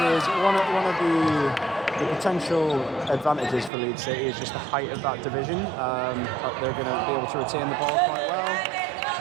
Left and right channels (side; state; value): left; drops out; at 3.7 s